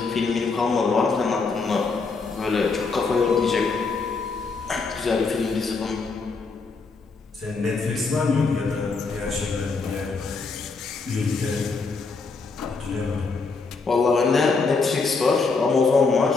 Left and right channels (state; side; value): quieter; right; 4.4 dB